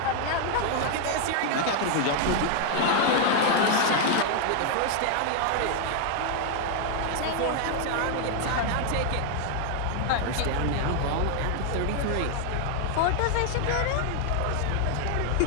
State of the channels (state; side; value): different; both; correlation 0.00